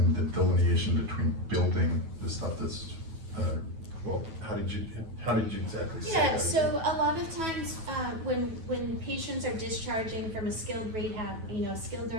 the delineation between building the stuff that's, well, how did you exactly say Yeah, that? so a lot of times, when patients are discharging from a skilled rehab, you know, skilled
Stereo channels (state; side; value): late; left; 9.2 ms